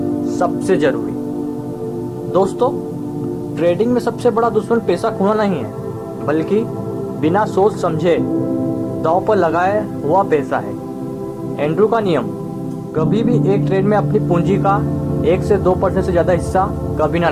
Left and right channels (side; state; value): both; identical; correlation 1.00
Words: सबसे जरूरी। दोस्तों, ट्रेडिंग में सबसे बड़ा दुश्मन पैसा खोना नहीं है, बल्कि बिना सोच समझे दांव पर लगाया हुआ पैसा है। एंड्रू का नियम, कभी भी एक ट्रेड में अपनी पूंजी का 1 से 2% से ज़्यादा हिस्सा कभी ना